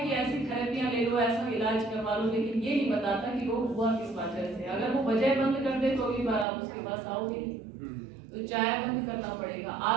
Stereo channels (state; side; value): drops out; left; at 6.5 s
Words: ऐसी थेरेपियां ले लो, ऐसा इलाज करवा लो, लेकिन ये नहीं बताता कि रोग हुआ किस वजह से। अगर वो वजह बंद कर दे तो अगली बार आप उसके पास आओगे। तो चाय बंद करना पड़ेगा।